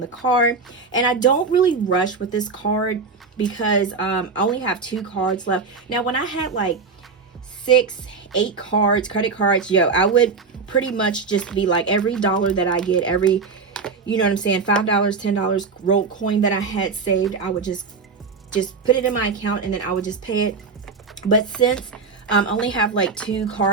card. And I don't really rush with this card, because I only have 2 cards left. Now when I had like 6, 8 cards, credit cards, yo, I would pretty much just be like, every dollar that I get, every, you know what I'm saying, $5, $10 rolled coin that I had saved, I would just put it in my account, and then I would just pay it But since I only have like 2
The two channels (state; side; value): quieter; left; 4.8 dB